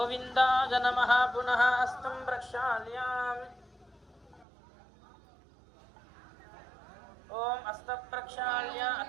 నమః పునః హస్తం ప్రక్షాళ్యామి ఓం హస్త ప్రక్షాళ్య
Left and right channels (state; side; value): drops out; left; at 4.5 s